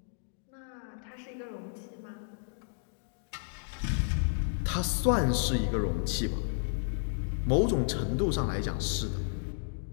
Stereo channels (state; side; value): silent; right; digital silence